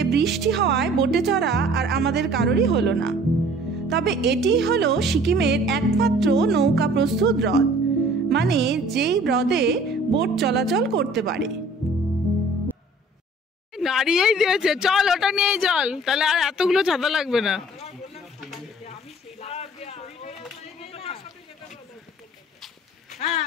বৃষ্টি হওয়ায় বোটে চড়া আর আমাদের কারোরই হলো না। তবে এটি হলো সিকিমের একমাত্র নৌকা প্রস্তুত হ্রদ, মানে যেই হ্রদে বোট চলাচল করতে পারে। নাড়িয়েই দিয়েছে, চল ওটা নিয়েই চল, তাহলে আর এতগুলো ছাতা লাগবে না।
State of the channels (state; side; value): normal; both; correlation 0.51